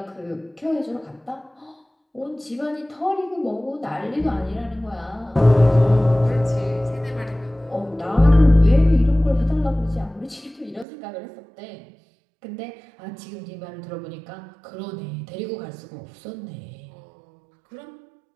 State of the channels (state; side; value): drops out; left; at 10.9 s